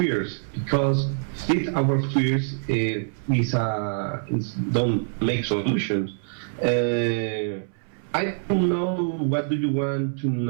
because feed our fears don't make solutions. I don't know what do you want to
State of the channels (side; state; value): left; silent; 62 dB below the other